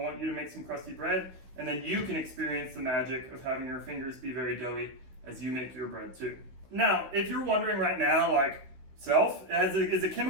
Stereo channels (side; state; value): left; late; 16 ms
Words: you to make some crusty bread, and then you can experience the magic of having your fingers be very doughy as you make your bread too. Now, if you're wondering right now, like, is a